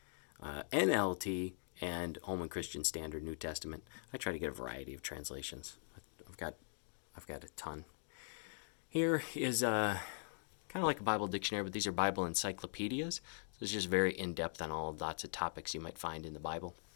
NLT, and Holman Christian Standard New Testament. I try to get a variety of translations. I've got a ton. Here is kind of like a Bible dictionary, but these are Bible encyclopedias. So it's just very in-depth on lots of topics you might find in the Bible.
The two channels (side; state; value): right; silent; digital silence